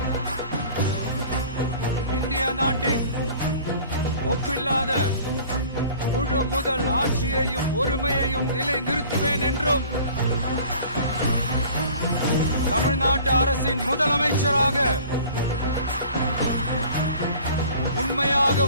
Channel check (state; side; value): inverted; both; correlation -0.47